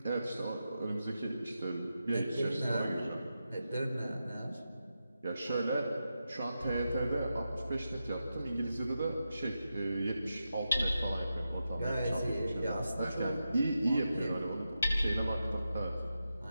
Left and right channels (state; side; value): inverted; both; correlation -0.89